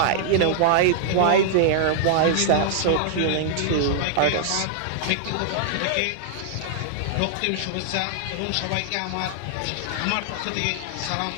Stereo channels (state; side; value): different; both; correlation -0.01